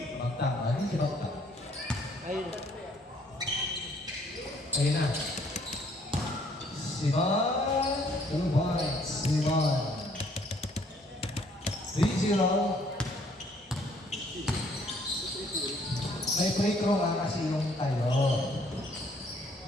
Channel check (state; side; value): normal; both; correlation 0.63